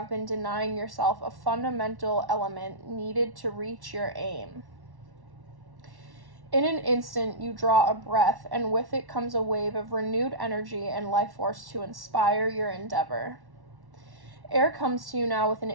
been denying yourself a fundamental element needed to reach your aim. In an instant, you draw a breath, and with it comes a wave of renewed energy and life force to inspire your endeavor. Air comes to you now with an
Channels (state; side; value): late; left; 1.1 ms